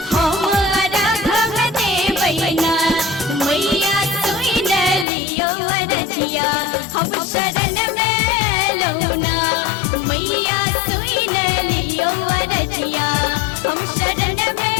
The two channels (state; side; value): drops out; right; at 5.1 s